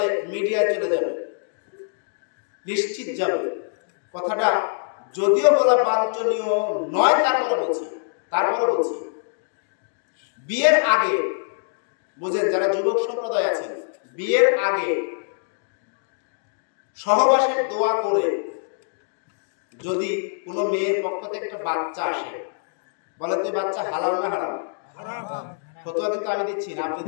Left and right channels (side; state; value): right; silent; digital silence